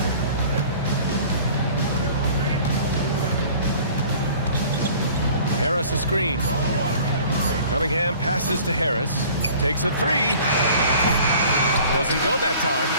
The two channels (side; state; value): both; inverted; correlation -0.48